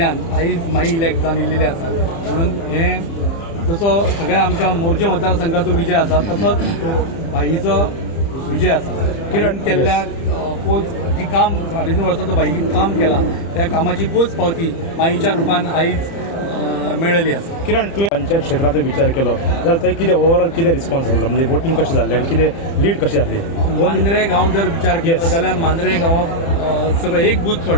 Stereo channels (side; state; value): right; late; 30 ms